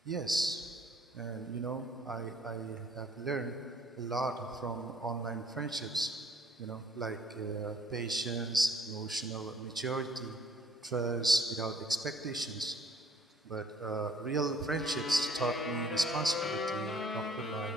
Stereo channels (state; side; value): normal; both; correlation 0.58